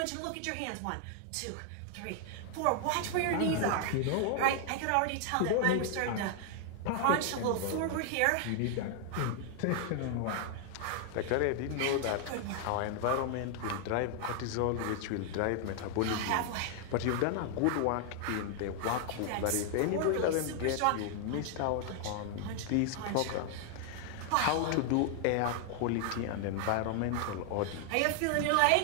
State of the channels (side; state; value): both; different; correlation 0.00